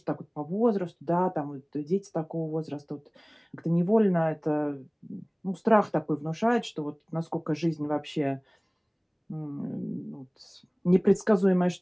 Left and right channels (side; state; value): both; identical; correlation 1.00